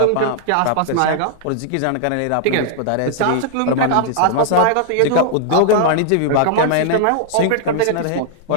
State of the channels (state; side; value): different; both; correlation -0.01